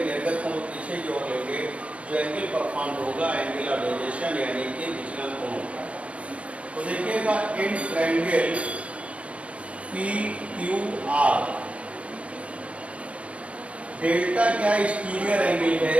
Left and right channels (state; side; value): late; left; 0.063 ms